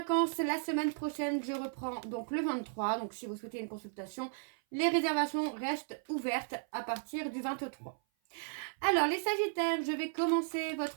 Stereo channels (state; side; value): silent; left; 54 dB below the other